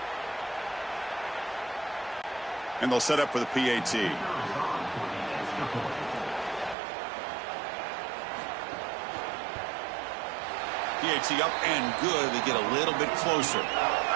And they'll set up for the PAT. PAT up and good. They get a little bit closer.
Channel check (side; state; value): left; drops out; at 6.8 s